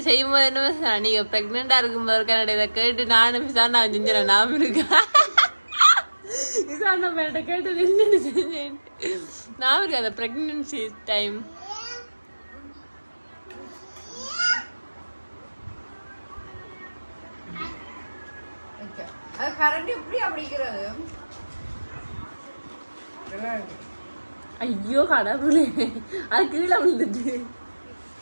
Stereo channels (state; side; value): inverted; both; correlation -1.00